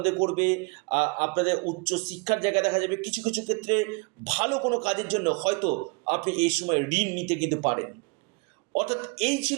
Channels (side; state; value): left; quieter; 29.9 dB